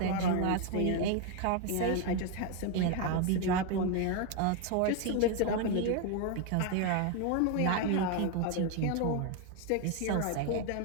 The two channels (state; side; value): different; both; correlation 0.01